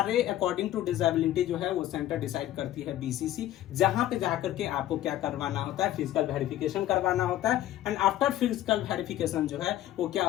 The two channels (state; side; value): quieter; right; 13.4 dB